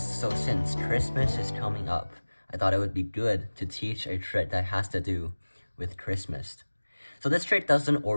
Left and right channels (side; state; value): both; inverted; correlation -1.00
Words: so since Christmas is coming up, I thought it would be good to teach a trick that has to do with Christmas. So this trick doesn't